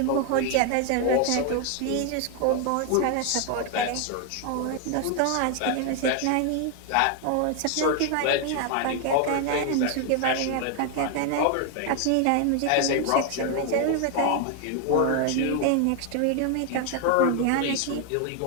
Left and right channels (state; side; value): different; both; correlation 0.01